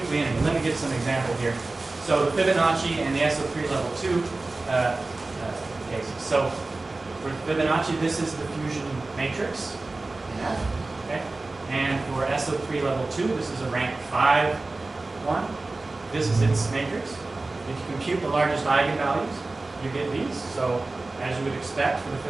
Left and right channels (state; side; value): quieter; left; 3.3 dB